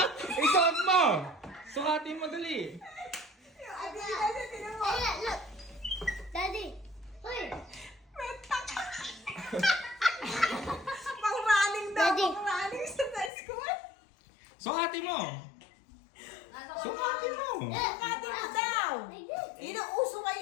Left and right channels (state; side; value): drops out; right; at 13.3 s